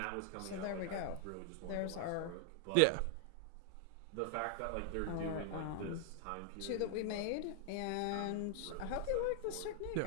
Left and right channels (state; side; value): different; both; correlation 0.00